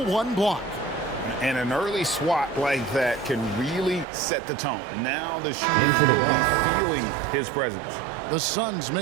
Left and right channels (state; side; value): drops out; left; at 4.0 s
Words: 1 block. And an early swat like that can really set the tone. Now the shooters will be feeling his presence. The Suns